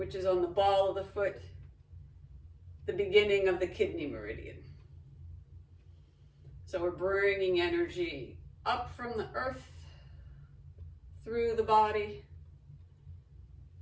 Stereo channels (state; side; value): identical; both; correlation 1.00